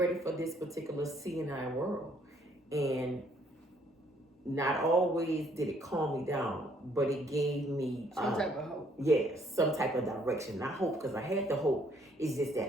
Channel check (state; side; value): normal; both; correlation 0.65